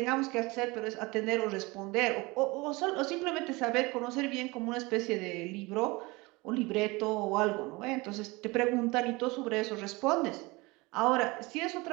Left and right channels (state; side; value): quieter; left; 24.0 dB